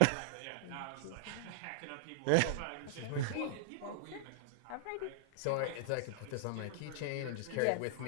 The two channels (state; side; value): different; both; correlation -0.01